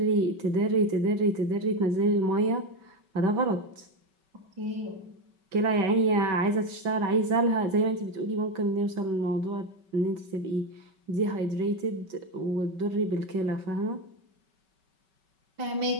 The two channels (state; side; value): late; left; 5.2 ms